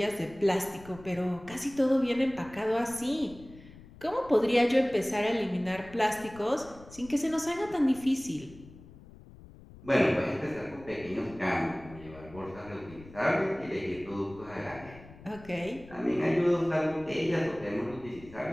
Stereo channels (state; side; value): noise; left; rumble, 19 dB below the sound